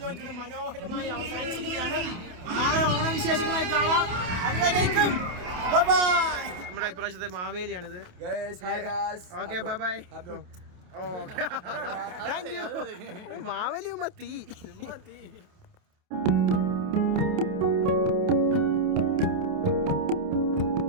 ലോഞ്ച് മനോഹരമായി അവസാനിച്ചിരിക്കുകയാണ്. നാളെ ഓണവിശേഷങ്ങളായി കാണാം. അതുവരേക്കും നമ്മുടെ ഇപ്രാവശ്യത്തെ മാവേലിയാണിത്. Okay bye bye. മാവേലിയുമ്പോ തീ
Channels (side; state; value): left; late; 28 ms